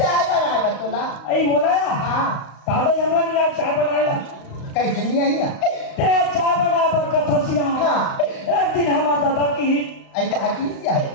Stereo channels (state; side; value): late; right; 35 ms